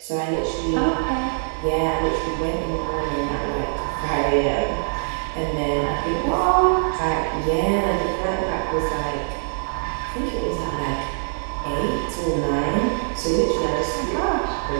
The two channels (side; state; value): left; silent; digital silence